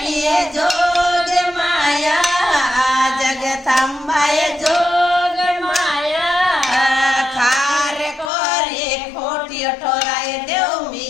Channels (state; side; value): drops out; right; at 8.3 s